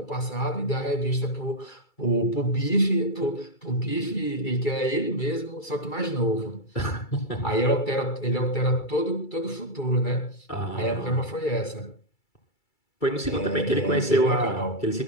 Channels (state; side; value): late; right; 2.3 ms